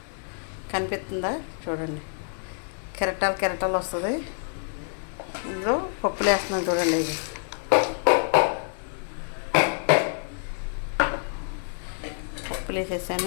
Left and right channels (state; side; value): silent; right; 59 dB below the other